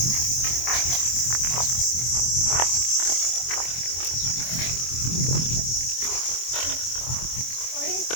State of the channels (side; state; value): right; late; 24 ms